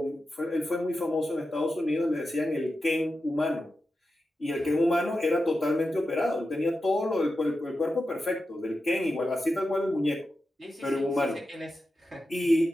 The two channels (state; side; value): normal; both; correlation 0.90